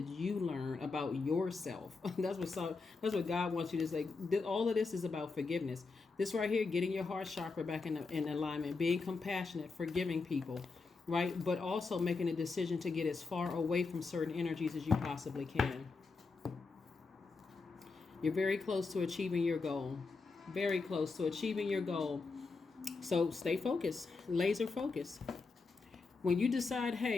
you learn about yourself? That's what God wants you to say. All of this is about forgiveness. This right here, getting your heart chakra back in alignment, being compassionate, forgiving people, right? But also making a decision to get as far away from certain energies as you possibly can. You're very close to achieving your goal. Very close to achieving your goal. So stay focused, laser focused. When you decide,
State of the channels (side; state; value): right; quieter; 4.2 dB